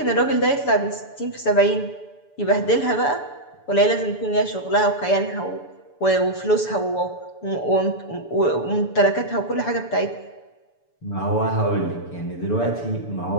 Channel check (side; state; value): right; late; 7.0 ms